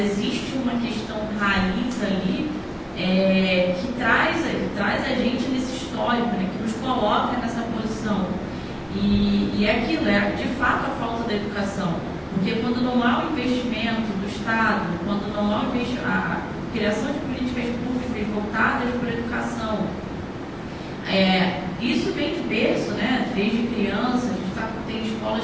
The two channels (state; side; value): identical; both; correlation 1.00